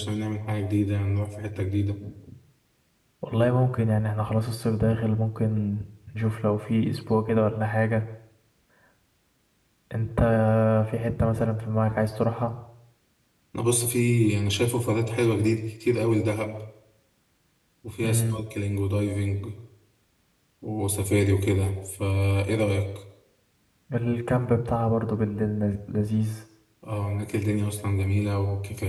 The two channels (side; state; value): both; identical; correlation 1.00